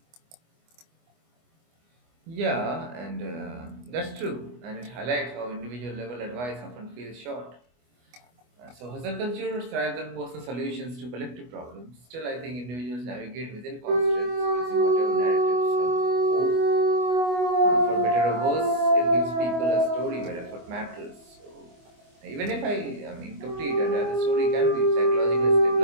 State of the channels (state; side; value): late; left; 24 ms